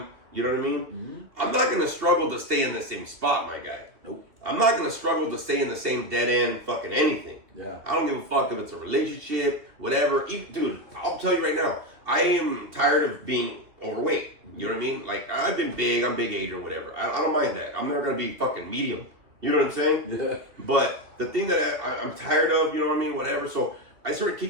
you know what I mean? Mm-hmm. I'm not gonna struggle to stay in the same spot, my guy. Nope. I'm not gonna struggle to stay in the same dead end fucking anything. Yeah. I don't give a fuck if it's a relationship, whatever. Dude, I'll tell you right now, I am tired of being overweight. You know what I mean? Like, I've been big, I'm big age or whatever. I don't mind that. I'm never gonna be fucking medium. You know what I'm saying? Yeah. But the thing that I'm tired of, you know what I mean? Whatever. So I started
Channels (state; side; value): late; left; 2.9 ms